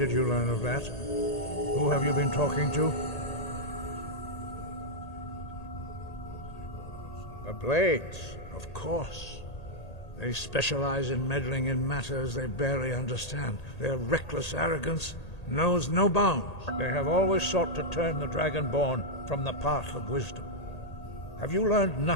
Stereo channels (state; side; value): late; right; 1.8 ms